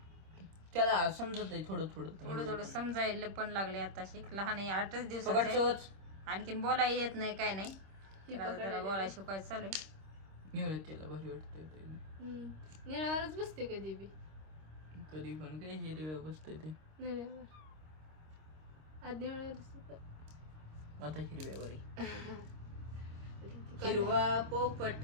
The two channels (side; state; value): left; late; 26 ms